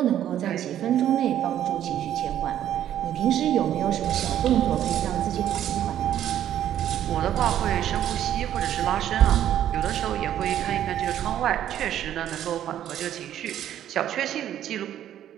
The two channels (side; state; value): left; quieter; 11.2 dB